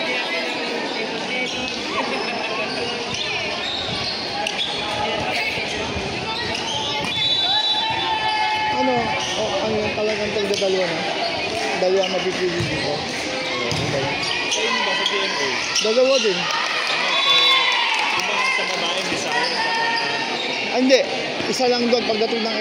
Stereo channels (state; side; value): identical; both; correlation 1.00